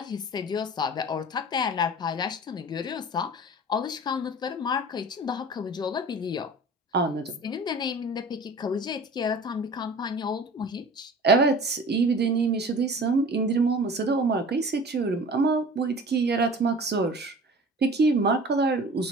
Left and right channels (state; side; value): normal; both; correlation 0.41